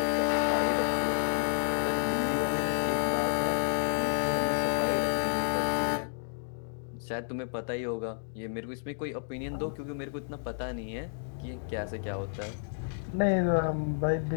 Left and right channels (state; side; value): silent; right; digital silence